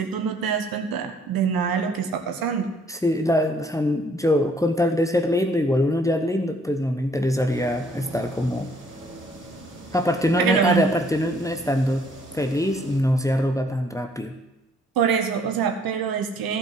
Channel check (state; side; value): normal; both; correlation 0.62